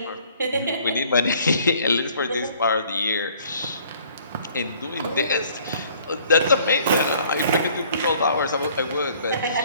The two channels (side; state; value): both; inverted; correlation -0.57